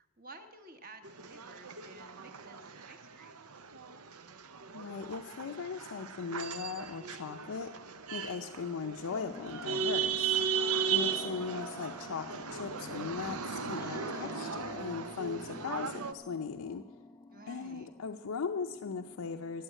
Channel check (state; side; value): normal; both; correlation 0.06